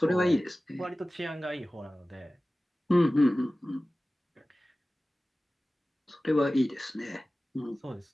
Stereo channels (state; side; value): normal; both; correlation 0.97